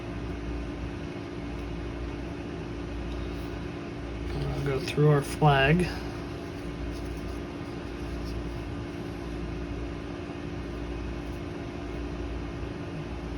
I'll go through our flag.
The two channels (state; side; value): identical; both; correlation 1.00